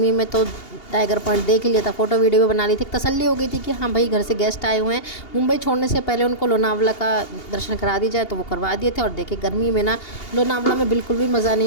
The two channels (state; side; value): late; right; 2.8 ms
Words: में तो टाइगर पॉइंट देख लिया था, फ़ोटो वीडियो भी बना ली थी, तसल्ली हो गई थी कि हाँ भाई घर से गेस्ट आए हुए हैं, मुंबई छोड़ने से पहले उनको लोनावला का दर्शन करा दी जाए, तो वो करवा दिए थे। और देखिए गर्मी में ना लोनावला में बिल्कुल भी मज़ा नहीं